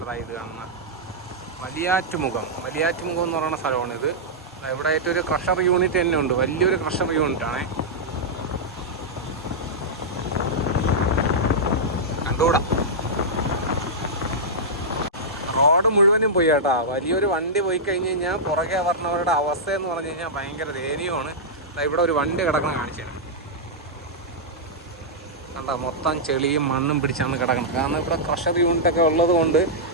ഇത് കാണുന്നത്. വലിയാറ്റുമുഖം എന്ന് പറയുന്ന സ്ഥലമാണ് ഇത്. ഇവിടെ ആയിട്ട് ഒരു ക്രഷർ യൂണിറ്റ് തന്നെ ഉണ്ട്, വലിയൊരു ക്രഷർ യൂണിറ്റാണ്. കണ്ടുകൂടാ, റോഡ് മുഴുവനും പോയി കേട്ടോ. വലിയൊരു വണ്ടി പോയി കഴിഞ്ഞ് കഴിഞ്ഞാൽ പുറകെ പറഞ്ഞവരുടെ അവസ്ഥ എന്ന് പറഞ്ഞു കഴിഞ്ഞാൽ ഭയങ്കര ദയനീയമാണ്. ഇവിടെ ഒരു വണ്ടി കിടക്കണം കാണിച്ചു തരാം. കണ്ട, മൊത്തം ചെളിയും മണ്ണും പിടിച്ചാണ് കിടക്കുന്നത്. കാരണം ഇവിടെ ക്രഷർ യൂണിറ്റൊക്കെ ഉള്ളത് കൊണ്ട്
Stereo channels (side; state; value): both; normal; correlation -0.10